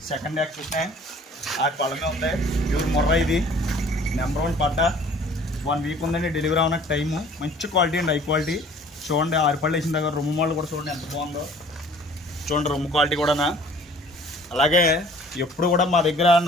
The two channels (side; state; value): both; normal; correlation 0.52